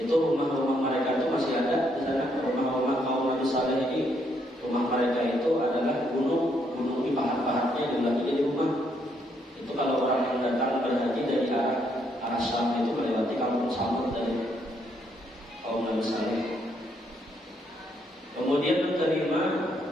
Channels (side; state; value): both; normal; correlation 0.73